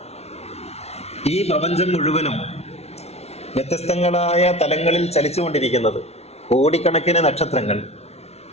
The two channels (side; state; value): right; late; 0.31 ms